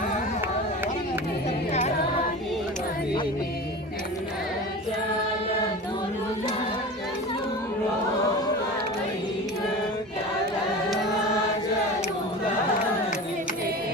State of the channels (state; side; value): normal; both; correlation 0.32